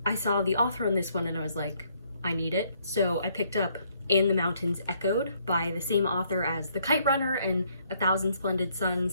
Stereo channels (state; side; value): inverted; both; correlation -0.69